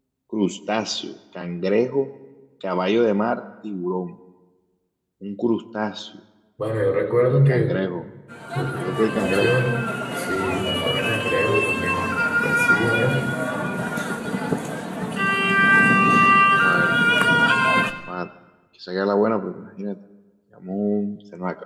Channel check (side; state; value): both; identical; correlation 1.00